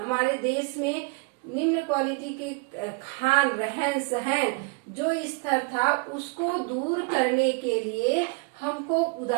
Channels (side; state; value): left; quieter; 30.6 dB